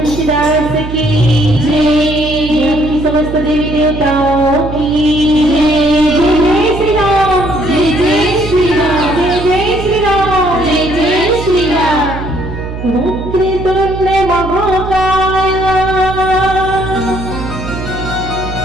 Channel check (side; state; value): right; noise; hum, 8 dB below the sound